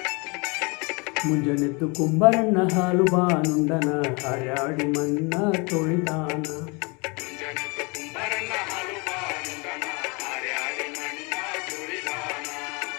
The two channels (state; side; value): quieter; right; 29.9 dB